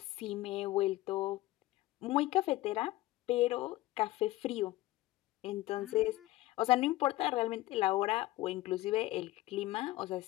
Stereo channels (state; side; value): quieter; right; 17.4 dB